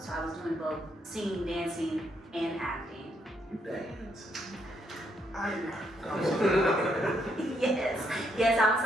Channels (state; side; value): normal; both; correlation 0.75